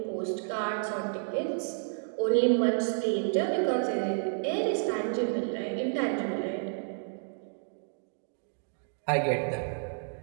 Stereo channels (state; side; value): silent; left; digital silence